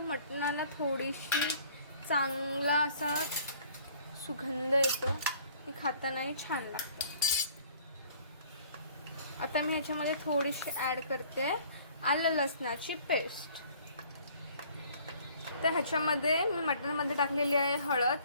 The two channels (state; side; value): inverted; both; correlation -0.55